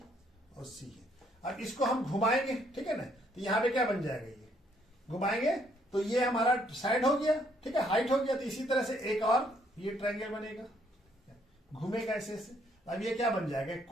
और सी है। अब इसको हम घुमाएंगे, ठीक है ना, तो यहाँ पे क्या बन जाएगा, ये घुमाएंगे तो ये हमारा साइड हो गया, ठीक है, हाइट हो गया। तो इसी तरह से एक और ये ट्रायंगल बनेगा, घूमेगा ऐसे ऐसे। अब ये क्या बन जाएगा,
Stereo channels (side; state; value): both; normal; correlation 0.68